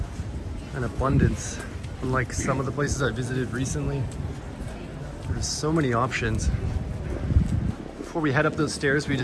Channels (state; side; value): identical; both; correlation 1.00